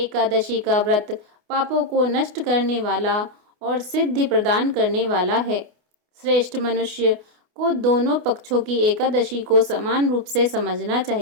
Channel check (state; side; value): late; left; 28 ms